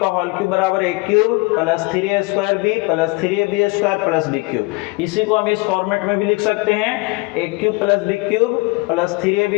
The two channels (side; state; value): right; quieter; 24.9 dB